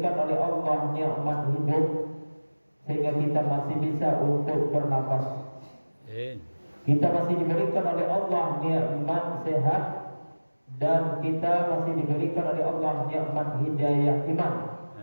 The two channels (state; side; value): inverted; both; correlation -1.00